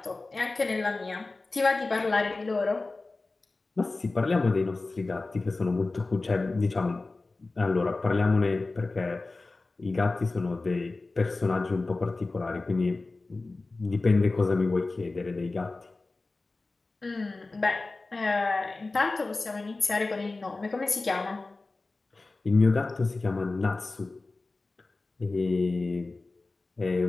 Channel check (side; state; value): right; quieter; 3.4 dB